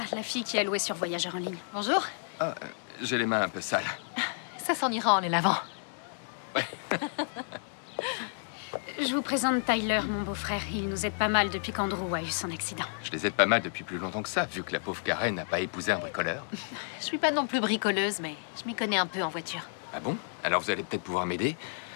la fille qui a loué sur Voyageur en ligne. Bonjour. Ah, j'ai les mains un peu sales. Ça s'en ira en les lavant. Je vous présente Tyler, mon beau-frère. Il nous aide pas mal depuis qu'Andrew a eu son accident. Je les aide pas mal depuis plus longtemps que ça, vu que la pauvre Karen n'a pas épousé un bricoleur. Je suis pas non plus bricoleuse, mais je m'y connais un peu en voiture. Ah bon? Alors vous allez peut-être pouvoir m'aider.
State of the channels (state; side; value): silent; right; digital silence